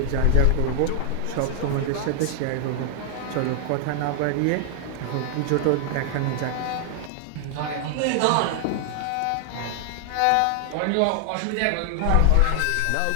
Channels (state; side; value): different; both; correlation 0.00